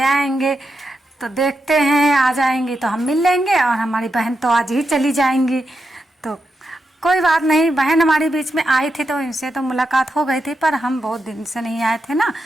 आएंगे। तो देखते हैं आ जाएंगी तो हम मिल लेंगे, और हमारी बहन तो आज ही चली जाएंगी। तो कोई बात नहीं, बहन हमारी बीच में आई थी तो इनसे तो मुलाकात हो गई थी, पर हम बहुत दिन से नहीं आए थे ना।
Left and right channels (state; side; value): normal; both; correlation 0.86